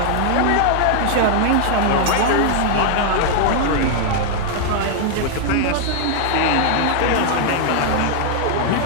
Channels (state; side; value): different; both; correlation 0.00